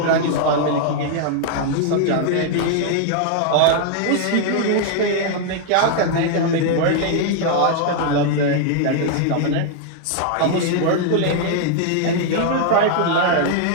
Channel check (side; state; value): both; different; correlation 0.00